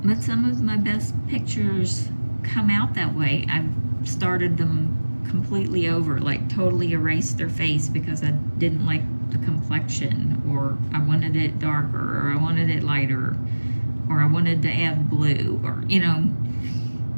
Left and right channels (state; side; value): inverted; both; correlation -1.00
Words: But some of my best pictures come out that way. I've started them completely over, like totally erased their face because I didn't like the complexion, or I wanted it darker, or I wanted it lighter, or I wanted to add blue, or, you know,